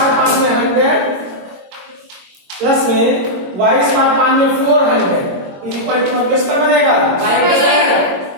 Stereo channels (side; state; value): left; late; 22 ms